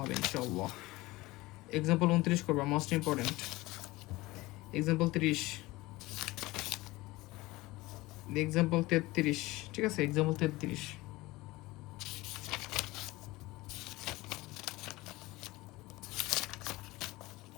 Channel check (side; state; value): right; quieter; 20.3 dB